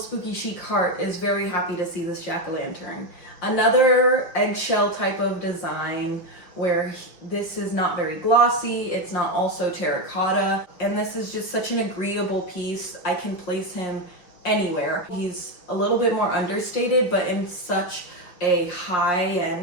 chic heart is very happy to see this jack-o'-lantern. Another eggshell type of design where this is not very glossy, it's not also terracotta, and this is just such an agreeable piece. I can place him anywhere. He's a little bit more understated, but in such a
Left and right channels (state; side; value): late; right; 5.8 ms